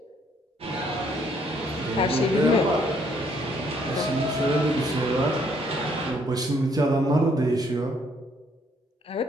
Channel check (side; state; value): both; normal; correlation 0.67